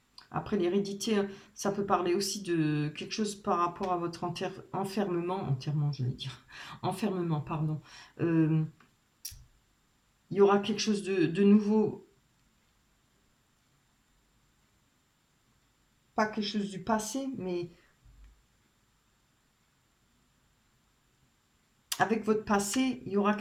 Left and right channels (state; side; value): identical; both; correlation 1.00